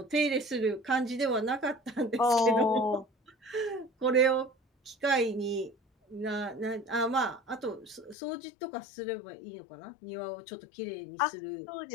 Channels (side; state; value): right; drops out; at 8.2 s